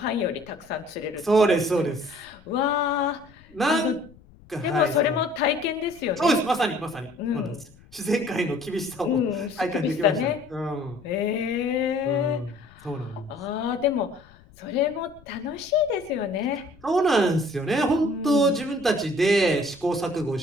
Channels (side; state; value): left; noise; rumble, 25 dB below the sound